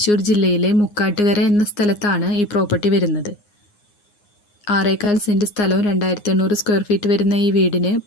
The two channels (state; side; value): late; right; 9.7 ms